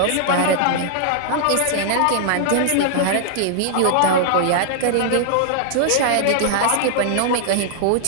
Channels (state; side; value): different; both; correlation -0.01